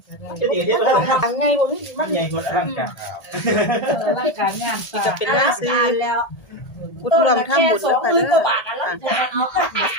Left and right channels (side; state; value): right; late; 1.7 ms